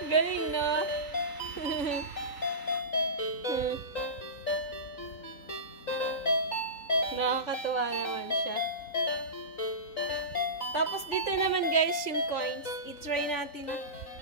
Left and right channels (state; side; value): late; right; 3.9 ms